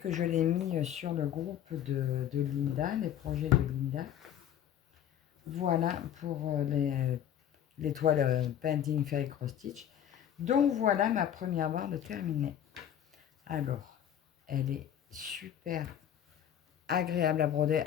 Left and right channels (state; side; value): quieter; right; 10.2 dB